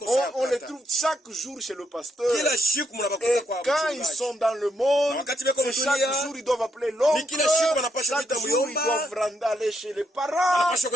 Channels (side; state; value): both; normal; correlation 0.78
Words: On les sana. trouve chaque jour chez le pasteur. Kila siku mnabakuta Et kwa quand ils mchungaji. sont dans le monde, Na wakati beko c'est mdunia, chaque jour ils doivent appeler l'oncle. ni kila siku wanapaswa Chaque kuita jour ils muyomba. doivent aller chez les parents. Wanapaswa